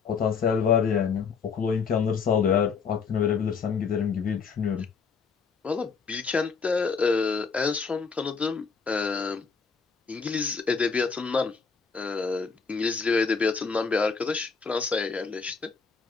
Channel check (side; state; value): right; quieter; 5.4 dB